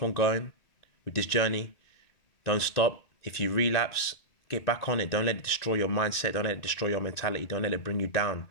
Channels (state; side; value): late; right; 2.6 ms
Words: on going with this journey. Don't stop. If you relapse, get back on it. Don't let it destroy your mindset. Don't let it destroy your mentality. Don't let it bring you down.